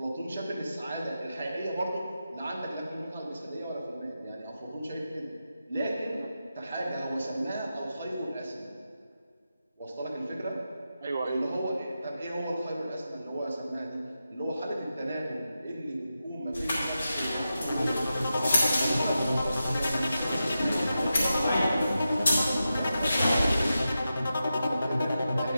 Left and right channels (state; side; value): inverted; both; correlation -0.90